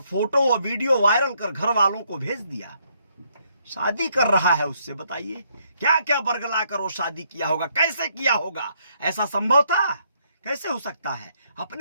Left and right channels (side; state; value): both; inverted; correlation -0.71